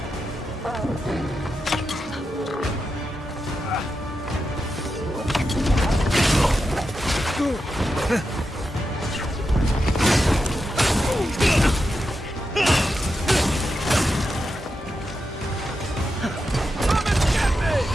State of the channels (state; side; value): normal; both; correlation 0.88